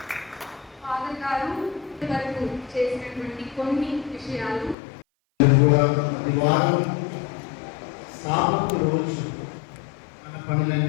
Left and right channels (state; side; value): drops out; right; at 4.8 s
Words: ఫాదర్ గారు వరకు చేసినటువంటి కొన్ని విషయాలు వారం సాబతు రోజు మన